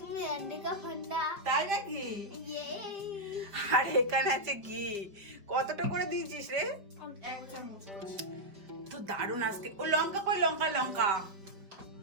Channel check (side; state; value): left; late; 5.1 ms